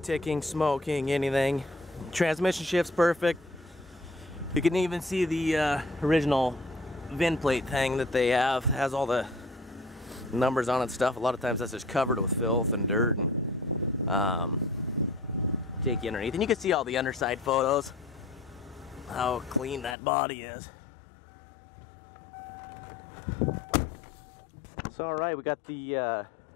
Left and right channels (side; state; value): right; drops out; at 20.0 s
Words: ticking, smoking, anything. Transmission shift's perfect. You can even see the original VIN plate thing that they have. It has all the numbers on it and stuff. A lot of times that's just covered with filth and dirt and take you underneath. And you can see all the underside photos. How clean that body is. So alright, we got the you